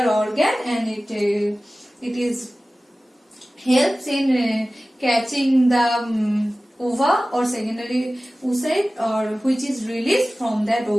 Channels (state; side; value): normal; both; correlation 0.97